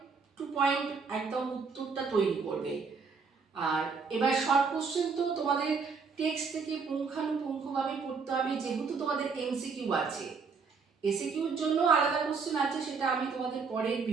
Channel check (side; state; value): left; quieter; 5.2 dB